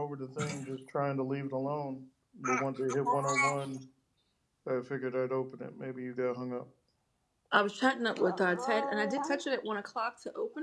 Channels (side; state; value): both; identical; correlation 1.00